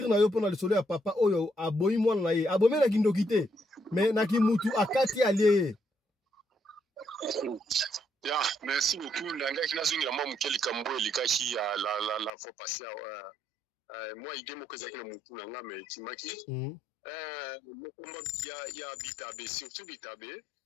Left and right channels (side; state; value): right; drops out; at 12.3 s